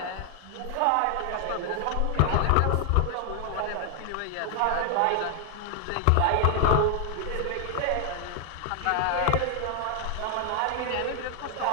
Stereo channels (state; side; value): different; both; correlation 0.00